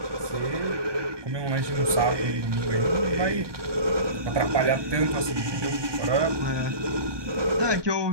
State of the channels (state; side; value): late; left; 1.2 ms